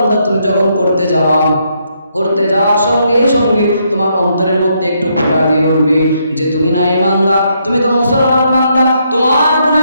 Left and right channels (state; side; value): inverted; both; correlation -0.75